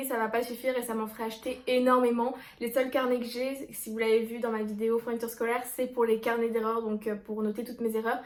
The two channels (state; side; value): identical; both; correlation 1.00